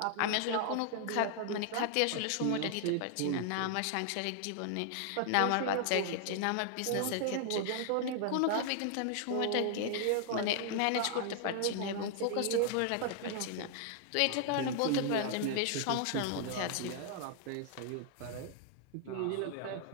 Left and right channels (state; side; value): different; both; correlation 0.00